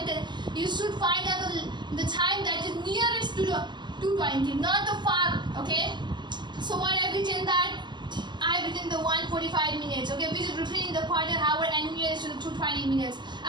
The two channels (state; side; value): late; left; 0.21 ms